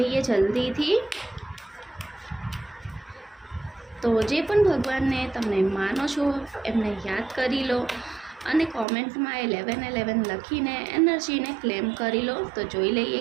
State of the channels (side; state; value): left; drops out; at 8.8 s